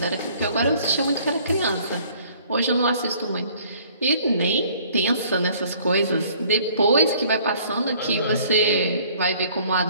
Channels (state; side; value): inverted; both; correlation -0.56